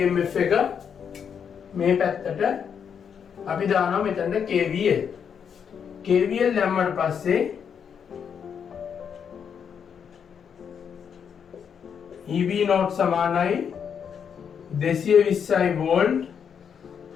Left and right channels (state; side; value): quieter; right; 7.4 dB